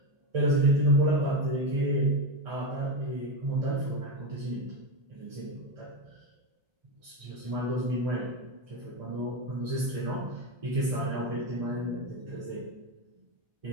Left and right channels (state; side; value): late; left; 1.3 ms